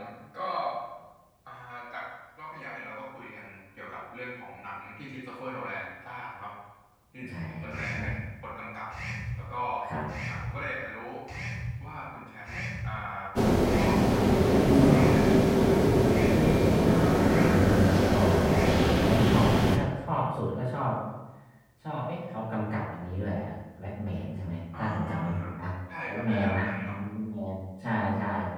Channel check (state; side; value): identical; both; correlation 1.00